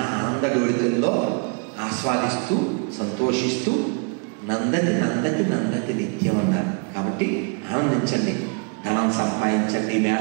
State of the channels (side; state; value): left; quieter; 36.9 dB